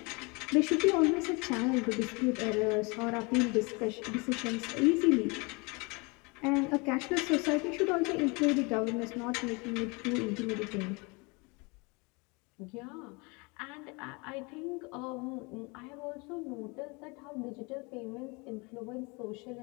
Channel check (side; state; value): right; quieter; 28.6 dB